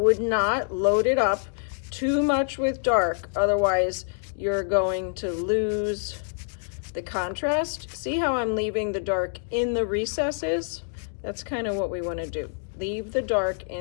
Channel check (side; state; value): right; silent; digital silence